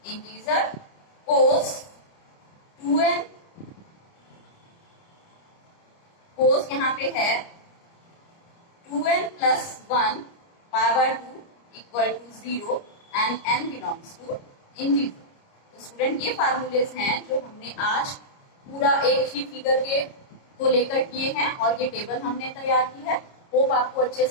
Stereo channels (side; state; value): right; late; 29 ms